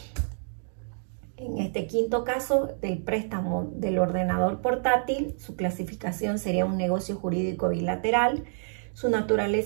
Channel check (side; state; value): left; silent; digital silence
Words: En este quinto caso del préstamo del ordenador portátil, su clasificación sería un negocio jurídico bilateral, su